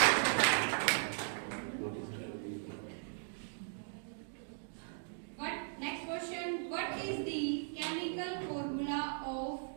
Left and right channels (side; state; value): left; silent; digital silence